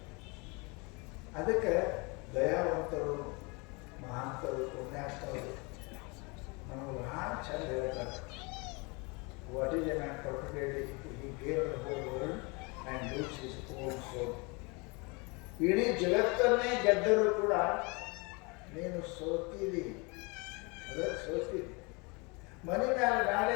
ಅದಕ್ಕೆ ದಯಾವಂತರು, ಮಹಾಂತರು, ಪುಣ್ಯಾತ್ಮರು ನಮಗೆ ಬಹಳ ಚಂದ ಹೇಳ್ತಾರೆ. What is a man particularly he gave the whole world and lose his own soul. ಇಡೀ ಜಗತ್ತನ್ನೇ ಗೆದ್ದರೂ ಕೂಡ ನೀನು ಸೋತಿದಿ, ಅದಕ್ಕೆ ಸೋತಿದಿ. ಮನೆ ಮೇಲೆ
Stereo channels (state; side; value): quieter; right; 29.0 dB